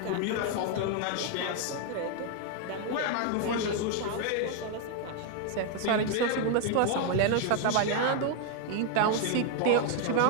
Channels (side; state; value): both; different; correlation 0.00